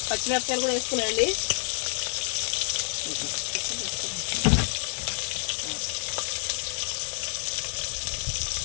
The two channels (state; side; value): silent; right; digital silence